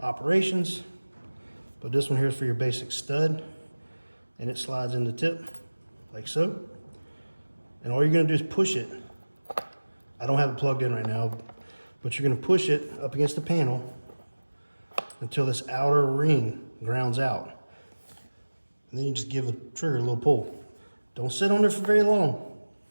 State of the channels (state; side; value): inverted; both; correlation -1.00